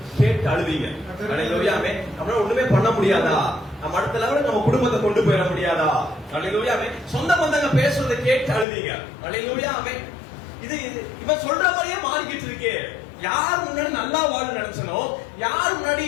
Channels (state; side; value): drops out; right; at 8.7 s